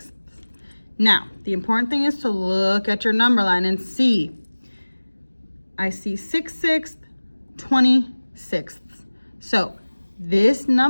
Now, the important thing is to look at your number line and see. I see 6/6, 20/6. So this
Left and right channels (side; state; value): both; inverted; correlation -1.00